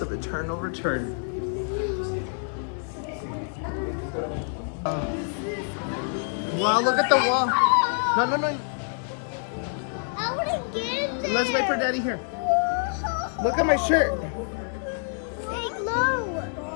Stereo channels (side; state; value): right; silent; 57 dB below the other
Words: Eternal Return. Wow, look at the wall. No, no, no. I wouldn't get in there. Let's wait for Daddy here. Look at my shirt. They glow.